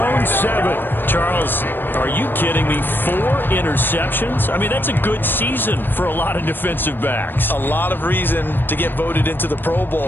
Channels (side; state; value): right; late; 0.095 ms